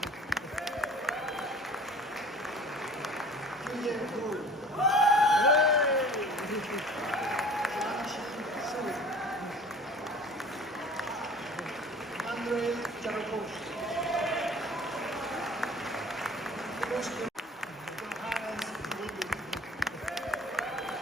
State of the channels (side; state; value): both; normal; correlation 0.46